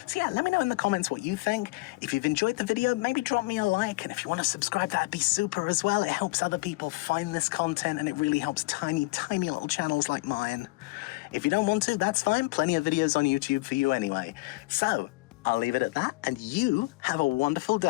So yeah, let me know in the comments what you think. If you've enjoyed the video, maybe drop me a like, and if you want to subscribe, that'd be super as well. It helps other people find this content, and it really helps tiny, tiny little channels like mine. If you don't want to, that's fine. Plenty of videos on YouTube for you anyway. So I'll leave it at that, and you have a wonderful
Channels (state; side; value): quieter; right; 24.0 dB